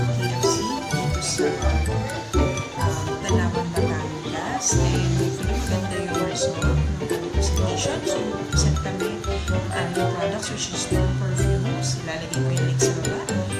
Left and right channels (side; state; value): both; identical; correlation 1.00